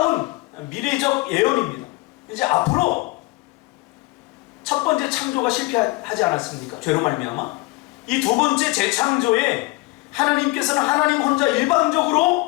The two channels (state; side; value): quieter; right; 22.4 dB